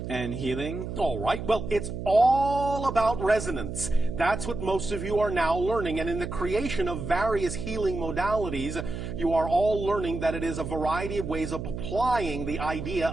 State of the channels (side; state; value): right; noise; hum, 6 dB below the sound